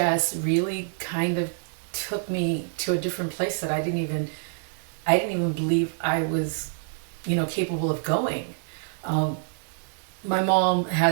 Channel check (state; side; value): silent; left; digital silence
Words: really kind of took me to a different place that I didn't even believe I was, capable of going. Um, my mom